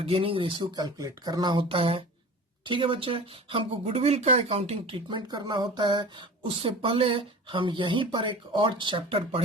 गेनिंग रेशियो कैलकुलेट करना होता है। ठीक है बच्चे, हमको गुडविल का अकाउंटिंग ट्रीटमेंट करना होता है। उससे पहले हम यहीं पर एक और चैप्टर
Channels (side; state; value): both; normal; correlation 0.37